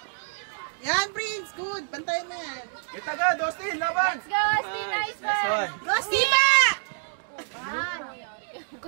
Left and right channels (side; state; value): left; silent; 60 dB below the other